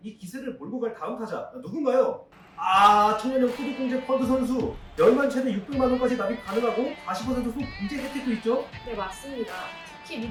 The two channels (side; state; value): both; identical; correlation 1.00